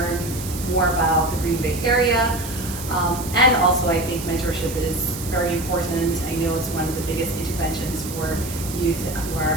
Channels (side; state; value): right; noise; hiss, 10 dB below the sound